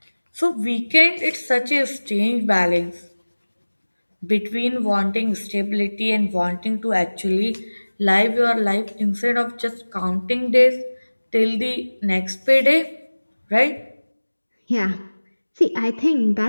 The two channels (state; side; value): inverted; both; correlation -1.00